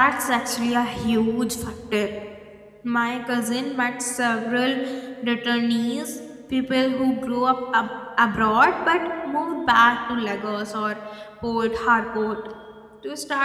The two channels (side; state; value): both; identical; correlation 1.00